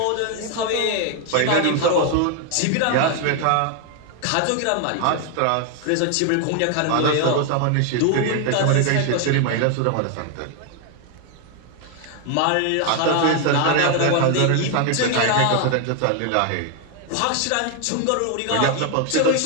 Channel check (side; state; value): both; different; correlation 0.01